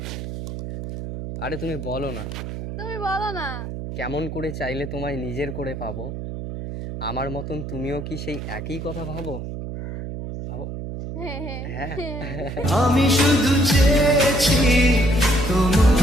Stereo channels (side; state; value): right; noise; hum, 7 dB below the sound